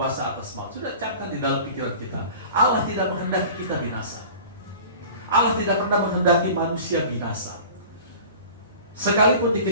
atas maut. Sudah camkan di dalam pikiran kita. Allah tidak menghendaki kita binasa. Allah tidak pernah menghendaki manusia binasa. Sekalipun di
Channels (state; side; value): inverted; both; correlation -0.41